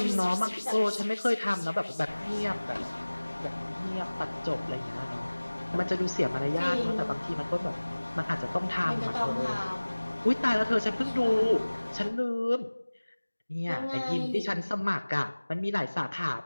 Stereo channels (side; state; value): both; inverted; correlation -1.00